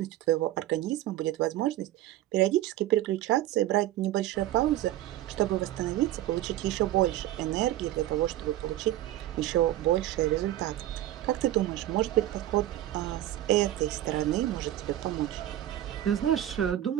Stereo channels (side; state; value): left; quieter; 13.7 dB